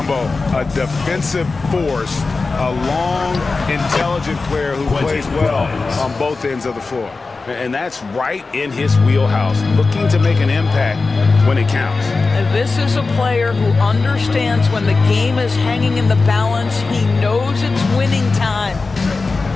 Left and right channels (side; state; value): right; quieter; 3.9 dB